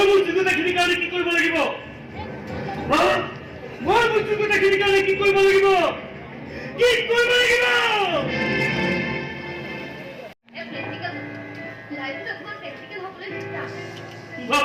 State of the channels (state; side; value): identical; both; correlation 1.00